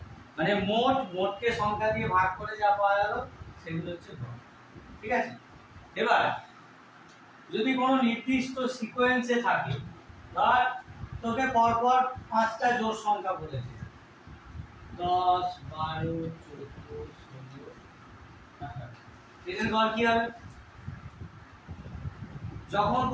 মানে মোটকে সংখ্যা দিয়ে ভাগ করে যা পাওয়া গেল সেগুলো হচ্ছে গড়, ঠিক আছে? এবার যদি কোনো নির্দিষ্ট সিকোয়েন্সে থাকে, ধর তোকে পরপর 5টা জোড় সংখ্যা বলেছে, 10, 12, 14, 16, এদের গড় কি হবে? যখন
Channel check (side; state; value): both; identical; correlation 1.00